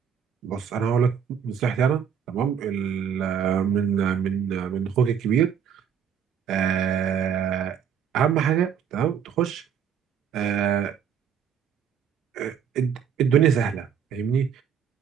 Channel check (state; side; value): quieter; left; 7.9 dB